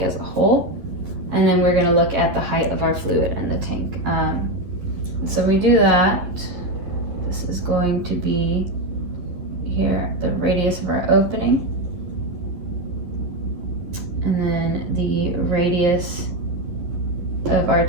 as a whole. And then we're going to look at the height of our fluid in the tank. So we do that. This is going to be here the radius of our opening, and then the radius of our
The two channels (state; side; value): late; left; 11 ms